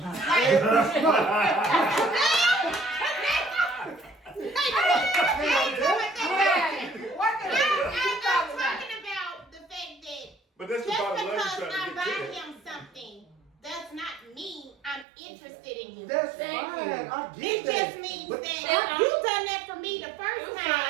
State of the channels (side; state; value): left; drops out; at 15.1 s